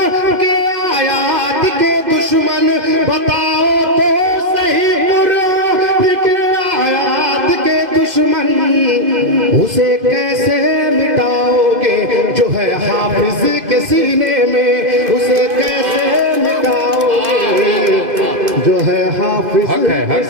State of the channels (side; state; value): left; late; 2.5 ms